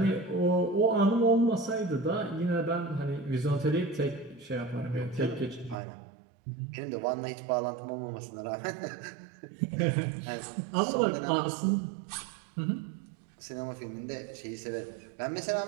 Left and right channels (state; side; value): drops out; left; at 5.8 s